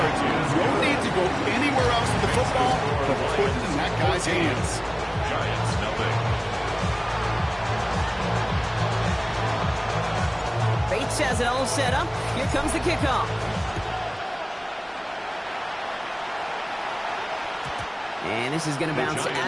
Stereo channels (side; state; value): both; identical; correlation 1.00